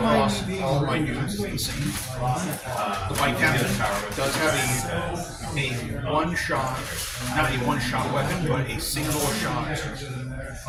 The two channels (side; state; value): both; identical; correlation 1.00